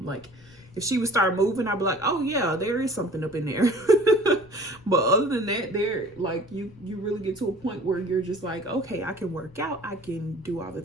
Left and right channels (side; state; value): left; noise; rumble, 25 dB below the sound